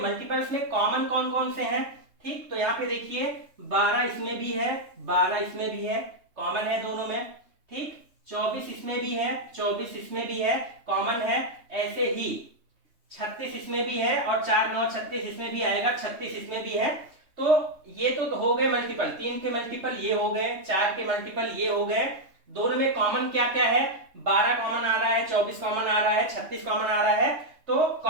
में कॉमन कौन कौन से हैं। ठीक, तो यहाँ पे देखिए 12 इसमें भी है, 12 इसमें भी है, कॉमन है दोनों में। ठीक, 24 इसमें भी है, 24 इसमें भी है, कॉमन है। ऐसे ही 36 इसमें भी है और 4 9 36 इसमें भी आएगा, 36 इसमें भी है। तो ये तो हो गए मल्टीपल। 3 के मल्टीपल ये हो गए, 4 के मल्टीपल ये हो गए। दोनों में कॉमन क्या क्या है, 12 कॉमन आ रहा है, 24 कॉमन आ रहा है, 36 कॉमन आ रहा है। तो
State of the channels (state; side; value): late; left; 3.2 ms